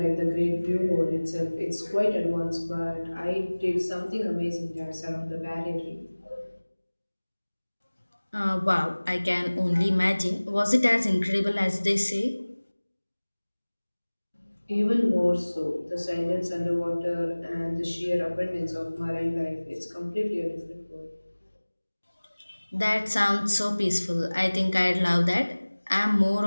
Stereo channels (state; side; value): inverted; both; correlation -1.00